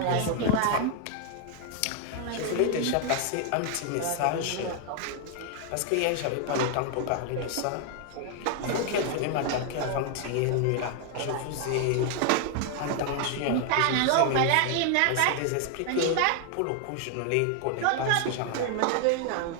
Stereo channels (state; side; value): different; both; correlation 0.00